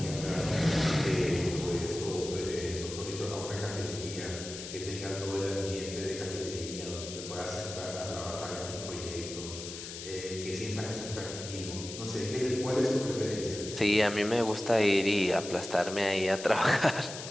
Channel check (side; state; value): left; noise; hiss, 10 dB below the sound